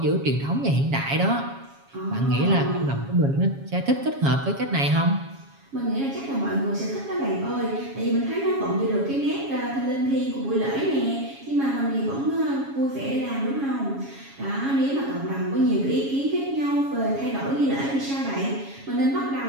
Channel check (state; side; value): late; left; 7.3 ms